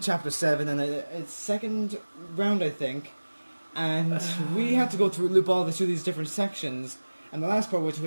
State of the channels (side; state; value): both; inverted; correlation -1.00